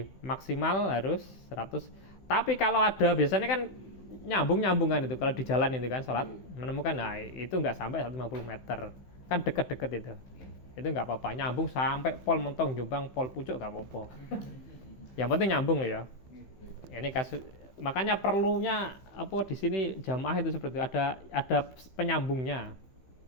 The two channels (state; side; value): late; right; 15 ms